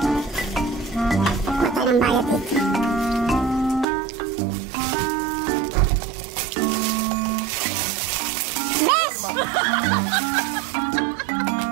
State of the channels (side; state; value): left; drops out; at 3.9 s